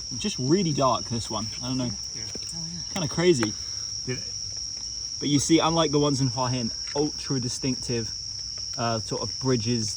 just really dark, this one. I don't know. Kind of crazy. But you see, unlike the ones in Hua Hin, ultra distinctive sort of bridges,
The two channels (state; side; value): identical; both; correlation 1.00